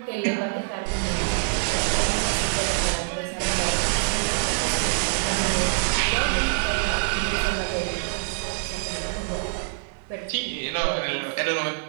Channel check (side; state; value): left; silent; digital silence